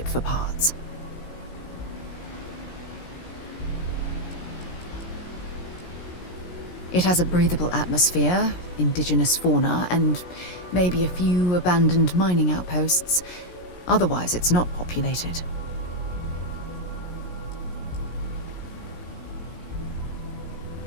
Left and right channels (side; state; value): right; late; 17 ms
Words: for parts. It has a breathable atmosphere, indigenous fauna, and maybe a few abandoned mining outposts. Otherwise, it's not populated.